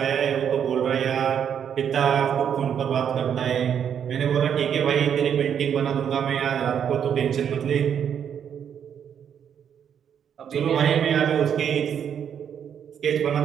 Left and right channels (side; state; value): left; quieter; 8.4 dB